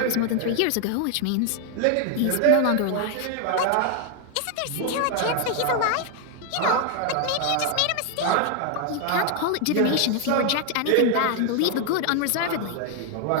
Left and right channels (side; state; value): both; different; correlation 0.00